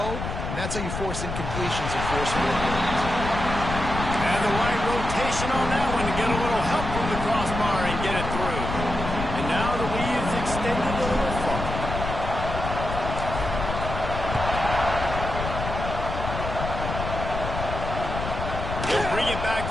and that's how you force incompletions and force field goals. And the right rotation on that one to get a little help from the crossbar and get it through. And now the lead is extended a little far. He'll bring it back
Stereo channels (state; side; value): noise; left; rumble, 5 dB below the sound